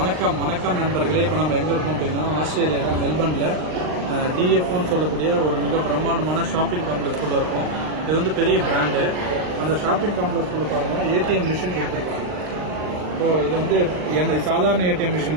நண்பர்களே. இப்போ நம்ம எங்கே இருக்கோம் அப்படின்னா ஆஸ்திரேலியாவில் மெல்பர்னில் டிஎஃப்னு சொல்லக்கூடிய ஒரு மிக பிரம்மாண்டமான ஷாப்பிங் காம்ப்ளெக்ஸ்குள்ளே இருக்கும். இது வந்து பெரிய பிராண்டு. அந்த ஷாப்பிங் காம்ப்ளெக்ஸ்குள்ளே பாருங்கள் ஏடிஎம் மிஷின் கொடுத்துருக்காங்க. ஸோ இது வந்து எங்கள் சாதாரண ஏடிஎம்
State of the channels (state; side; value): late; left; 39 ms